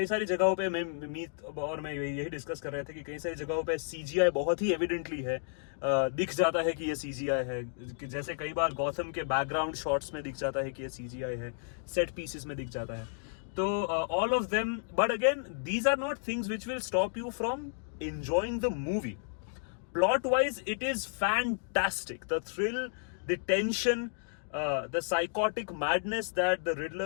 सारी जगहों पे मीत और मैं यही डिस्कस कर रहे थे कि कई सारी जगहों पे सीजीआई बहुत ही एविडेंटली है, दिख जाता है कि ये सीजीआई है, कि जैसे कई बार गौतम के बैकग्राउंड शॉट्स में दिख जाता है कि ये सीजीआई है, सेट पीसेस में दिख जाता है। तो all of them, but again these are not things which will stop you from enjoying the movie. Plot wise, it is fantastic. The thrill, the tension, the psychotic madness that the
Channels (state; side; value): silent; right; digital silence